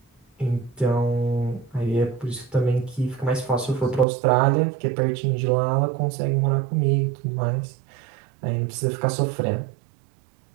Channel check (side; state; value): left; drops out; at 4.0 s